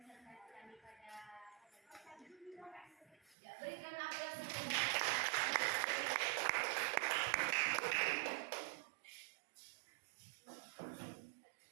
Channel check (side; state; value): left; drops out; at 3.4 s